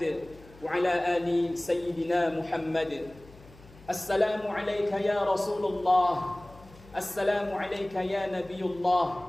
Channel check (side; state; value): left; noise; hum, 22 dB below the sound